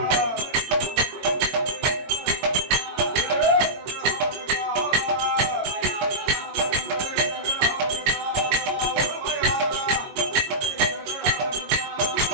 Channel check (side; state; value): left; late; 22 ms